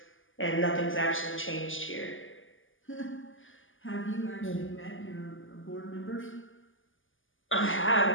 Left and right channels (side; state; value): right; late; 0.58 ms